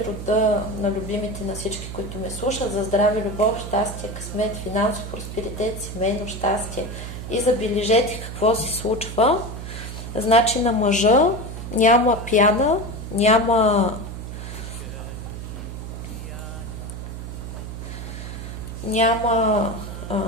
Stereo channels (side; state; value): right; noise; hum, 8 dB below the sound